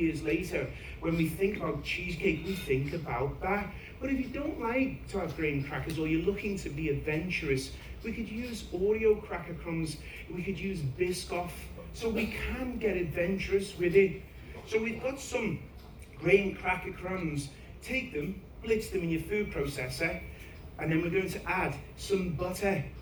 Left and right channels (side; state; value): both; identical; correlation 1.00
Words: later, when we think about cheesecake, we think about that. But if you don't like to have graham crackers, or you're looking to be adventurous, we could use Oreo cracker crumbs, we could use Biscoff, so we can get adventurous with it. So we've got some graham cracker crumbs. Take them, blitz them in your food processor, and then we're going to add some butter.